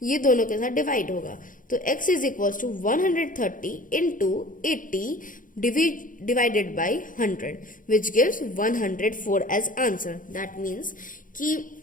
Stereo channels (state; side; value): late; right; 0.39 ms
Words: ये दोनों के साथ डिवाइड होगा। तो x is equals to 130 into 80 divided by 100 which gives 104 as answer. That means कि